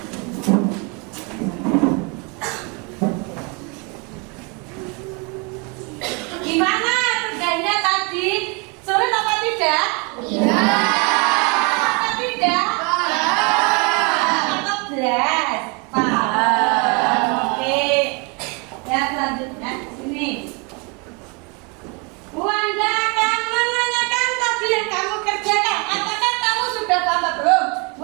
Gimana kerjanya tadi? Sulit apa tidak? Iya. Apa tidak? Atau belas? Paham. Oke. Ya selanjutnya sini. Bu Anda akan menanyakan tadi yang kamu kerjakan. Apakah kamu sudah tambah belum? Bu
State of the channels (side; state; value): left; quieter; 32.0 dB